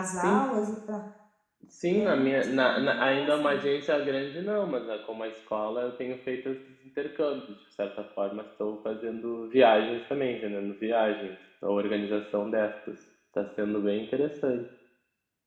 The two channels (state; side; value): identical; both; correlation 1.00